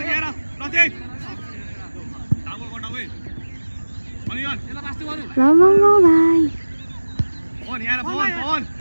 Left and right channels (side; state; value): both; inverted; correlation -1.00